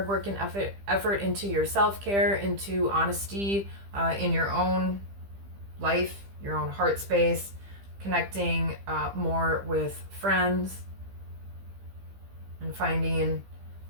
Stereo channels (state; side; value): late; left; 15 ms